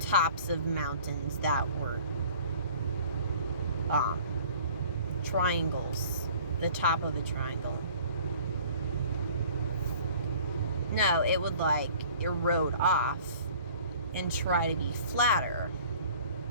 tops of mountains that were triangles, the top of a triangle. No, it would, like, erode off and try to be flatter.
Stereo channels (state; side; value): inverted; both; correlation -0.50